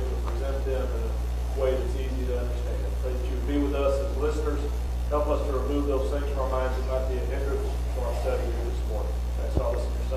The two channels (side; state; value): both; identical; correlation 1.00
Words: to present them in a way that's easy to understand. Pray that you would be with us as listeners. Help us to remove those things from our minds and not be a hindrance to our study here this morning. Thanks all this in your